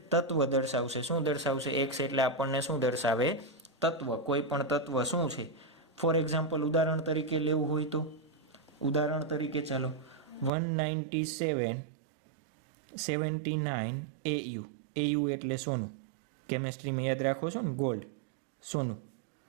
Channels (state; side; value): drops out; left; at 10.5 s